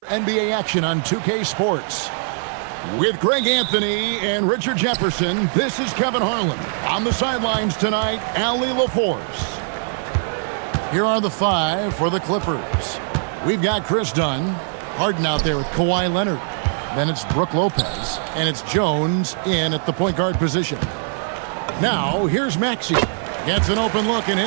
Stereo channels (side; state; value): left; silent; 57 dB below the other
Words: NBA action on 2K Sports. With Greg Anthony and Richard Jefferson, this is Kevin Harlan. On the sidelines tonight, Allie LaForce. Here are the five for the Clippers. We've got Chris Dunn, Harden out there with Kawhi Leonard. Then it's Brooke Lopez, and it's Jones in at the point guard position. Now, here's Maxey. Gets an open look and